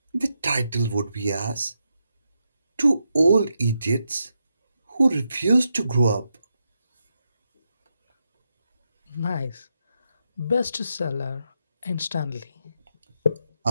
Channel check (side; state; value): both; inverted; correlation -0.84